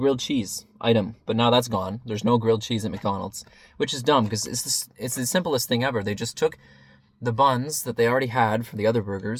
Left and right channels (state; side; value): identical; both; correlation 1.00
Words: cheese item, but now that's gone. There's no grilled cheese at McDonald's, which is dumb because it's the simplest thing ever. They just took the buns that they already had for the other